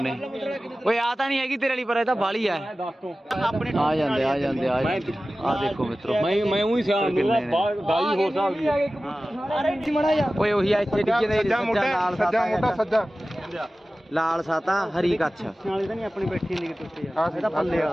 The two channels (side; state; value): both; normal; correlation 0.96